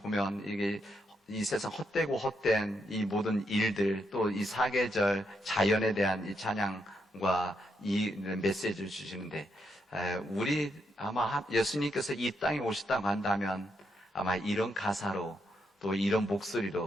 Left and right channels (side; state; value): both; normal; correlation 0.80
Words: 이게 이 세상 헛되고 헛된 이 모든 일들, 또 이 사계절 자연에 대한 이 찬양과 이 메시지를 주시는데, 우리 아마 예수님께서 이 땅에 오셨다고 한다면 아마 이런 가사로 또 이런